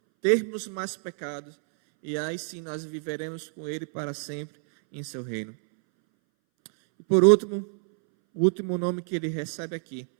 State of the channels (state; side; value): silent; left; 60 dB below the other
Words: termos mais pecados. E aí sim nós viveremos com Ele para sempre em seu reino. E por último, o último nome que Ele recebe aqui